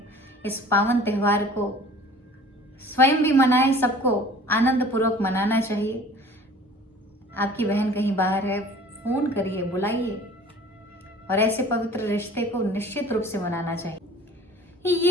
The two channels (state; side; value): normal; both; correlation 0.47